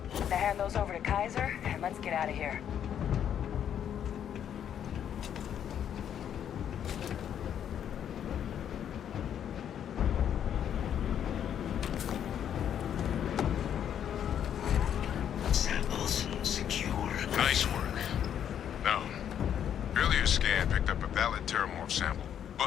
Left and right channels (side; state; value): right; quieter; 9.3 dB